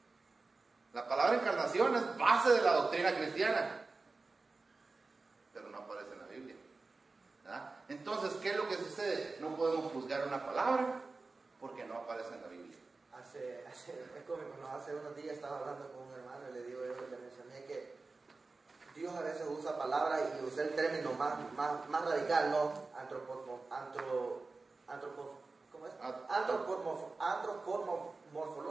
La palabra encarnación es base de la doctrina cristiana, pero no aparece en la Biblia. ¿Verdad? Entonces, ¿qué es lo que sucede? No podemos juzgar una palabra porque no aparece en la Biblia. Es cómico, ¿no? Hace unos días estaba hablando con un hermano y le mencioné que Dios a veces usa palabras y usé el término más radical, ¿no?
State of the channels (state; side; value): quieter; left; 3.8 dB